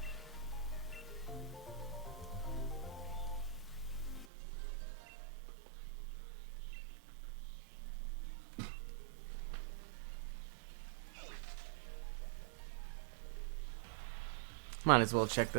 Might as well check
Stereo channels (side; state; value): left; drops out; at 4.2 s